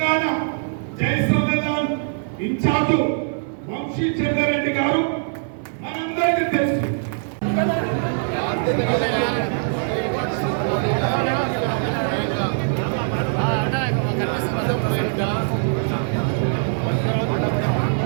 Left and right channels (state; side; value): silent; left; 64 dB below the other